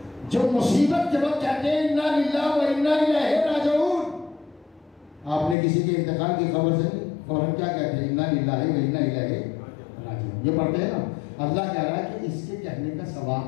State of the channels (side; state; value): right; drops out; at 5.6 s